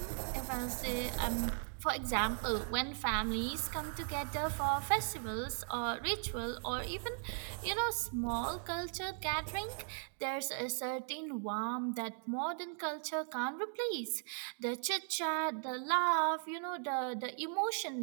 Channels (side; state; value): left; silent; 52 dB below the other